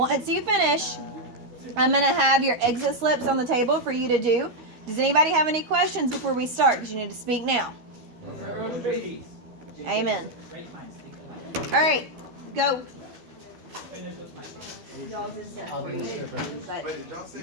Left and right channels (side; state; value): left; late; 13 ms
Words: you finish, I'm going to have your exit slips on the table for you to do. Does anybody have any questions before we start? Because you need to speak now. Amen. All right, go. I'll be the stripper. But Wait, did y'all say